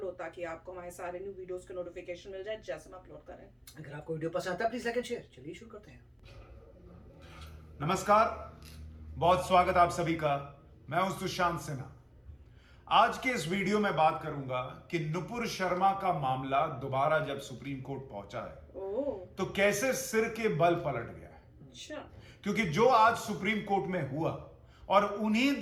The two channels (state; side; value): identical; both; correlation 1.00